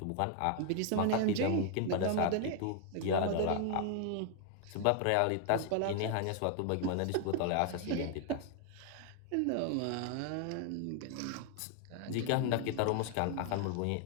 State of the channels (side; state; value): both; different; correlation 0.00